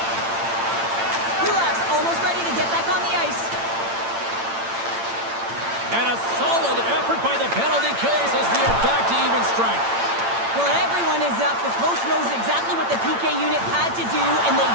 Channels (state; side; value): late; left; 8.8 ms